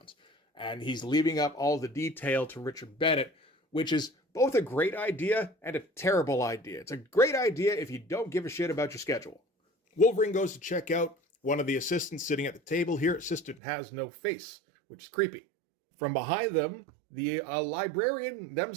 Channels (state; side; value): drops out; left; at 13.6 s